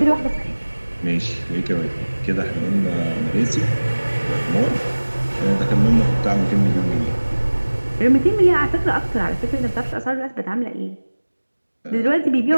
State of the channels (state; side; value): inverted; both; correlation -1.00